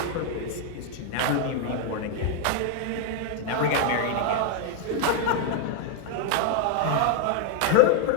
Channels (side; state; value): both; different; correlation 0.01